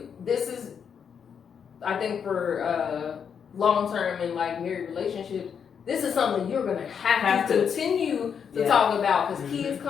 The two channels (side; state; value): right; quieter; 7.2 dB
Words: I think for long term and like married relationships, this is something you're gonna have to continue to talk about, because kids